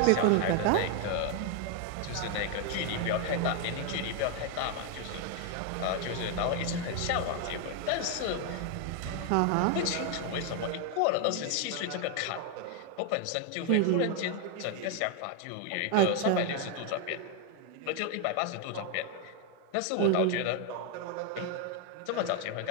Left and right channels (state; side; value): different; both; correlation 0.01